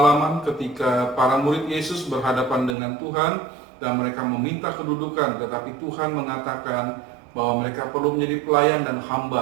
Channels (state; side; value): drops out; left; at 2.8 s